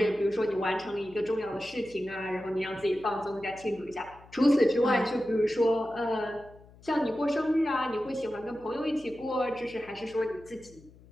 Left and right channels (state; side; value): noise; left; hum, 24 dB below the sound